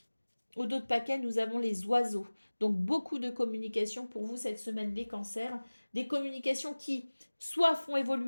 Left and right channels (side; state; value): both; inverted; correlation -1.00